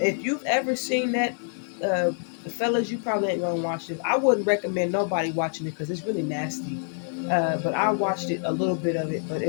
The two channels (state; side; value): silent; right; digital silence